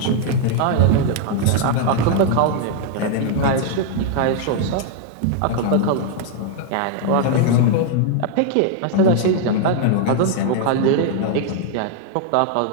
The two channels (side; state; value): both; different; correlation 0.00